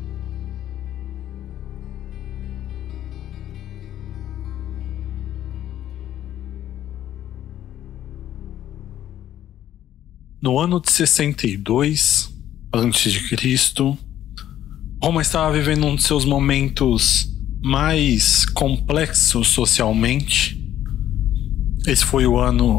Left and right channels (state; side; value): quieter; right; 11.8 dB